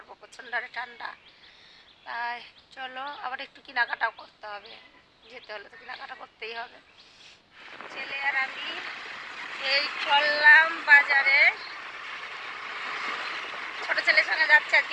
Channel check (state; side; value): identical; both; correlation 1.00